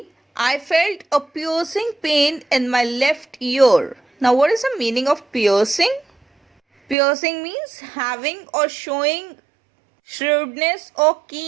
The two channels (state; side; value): drops out; left; at 7.0 s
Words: I felt a piercing pain in my left ear. Now, what is the meaning of piercing? Piercing means having or showing shrewdness or